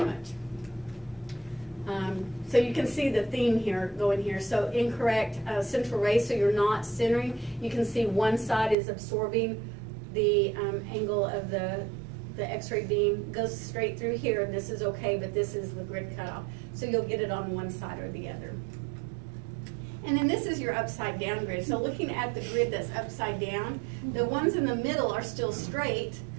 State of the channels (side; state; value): left; drops out; at 8.8 s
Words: So you can see the theme here going here. So incorrect central ray, so you're not centering. You can see one side is absorbing the angle of the X-ray beam, goes straight through here, and this is okay, but this is the grid cutoff. So you'll get it on one side or the other. And then this is your upside down grid. So looking at the grid that's upside down, the ones in the middle are still straight.